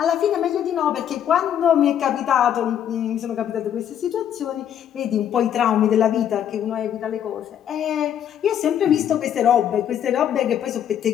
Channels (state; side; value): quieter; right; 9.7 dB